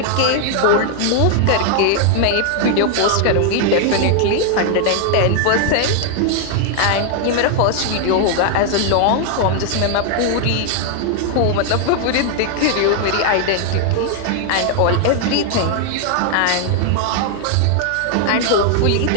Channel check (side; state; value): both; different; correlation 0.00